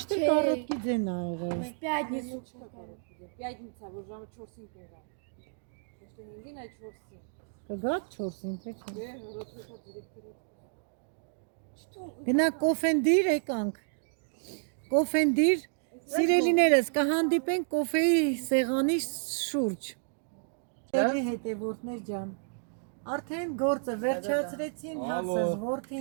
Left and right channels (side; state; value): left; silent; digital silence